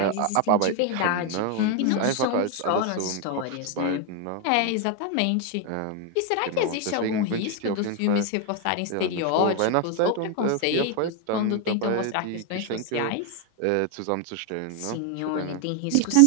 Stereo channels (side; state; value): both; different; correlation 0.01